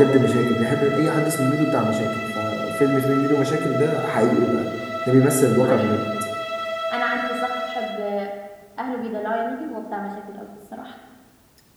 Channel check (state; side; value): identical; both; correlation 1.00